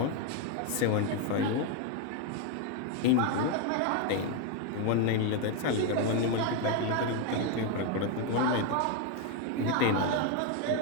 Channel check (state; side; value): different; both; correlation 0.01